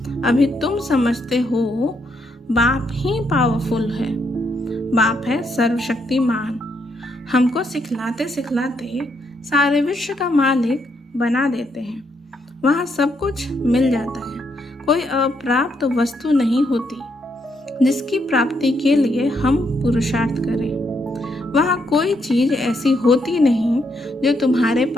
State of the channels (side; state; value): both; normal; correlation 0.76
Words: अभी तुम समझते हो बाप ही पावरफुल है। बाप है सर्वशक्तिमान। हमको सिखलाते सिखलाते सारे विश्व का मालिक बना देते हैं। वहाँ सब कुछ मिल जाता है। कोई अप्राप्त वस्तु नहीं होती जिसकी प्राप्ति के लिए हम पुरुषार्थ करें। वहाँ कोई चीज ऐसी होती नहीं जो तुम्हारे